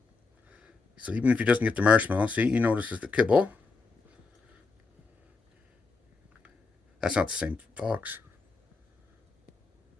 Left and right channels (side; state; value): right; quieter; 4.2 dB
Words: So even if he doesn't get the marshmallow, see, he notices the kibble. That's not the same fox.